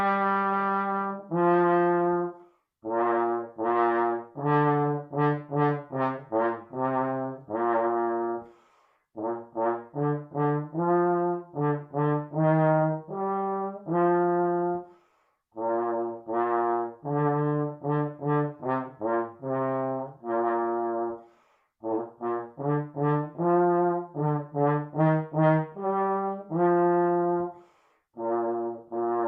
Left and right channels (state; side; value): identical; both; correlation 1.00